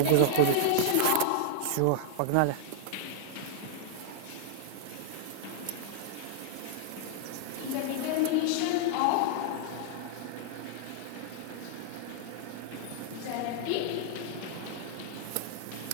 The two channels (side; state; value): both; different; correlation -0.01